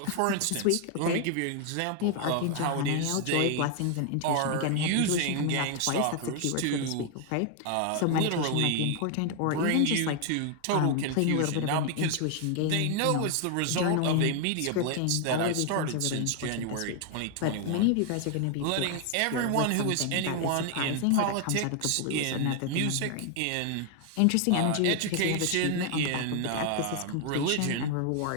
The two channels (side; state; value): both; different; correlation 0.00